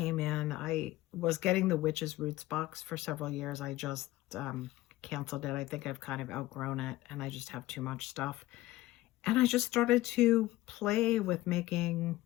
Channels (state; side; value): quieter; right; 17.1 dB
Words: in. I was getting the Witch's Roots box for several years. I just canceled it. I think I've kind of outgrown it and I just have too much stuff. And I just started to play with making